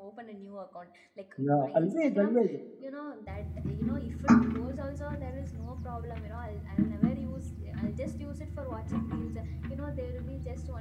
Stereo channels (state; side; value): identical; both; correlation 1.00